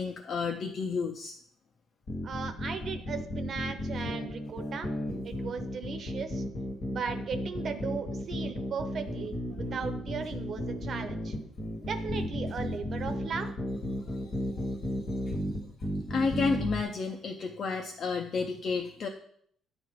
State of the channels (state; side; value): normal; both; correlation 0.79